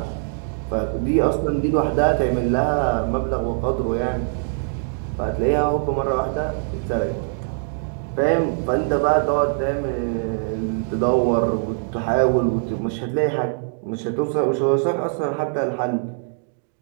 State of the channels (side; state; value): left; silent; digital silence